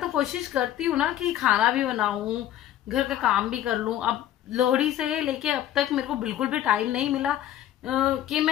कोशिश करती हूँ ना कि खाना भी बनाऊं, घर का काम भी कर लूं। अब लोहड़ी से लेके अब तक मेरे को बिल्कुल भी टाइम नहीं मिला कि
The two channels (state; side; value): quieter; right; 12.1 dB